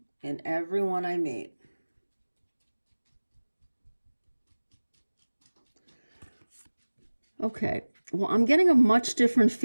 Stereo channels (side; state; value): both; inverted; correlation -1.00